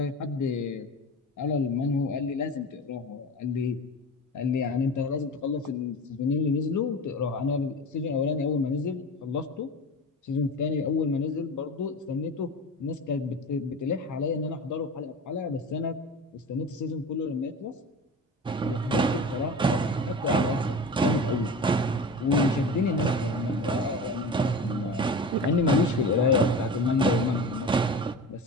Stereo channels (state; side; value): normal; both; correlation 0.32